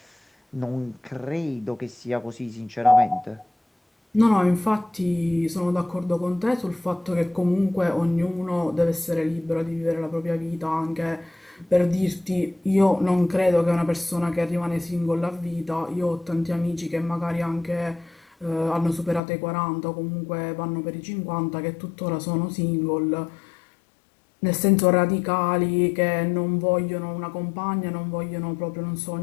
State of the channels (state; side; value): drops out; right; at 19.2 s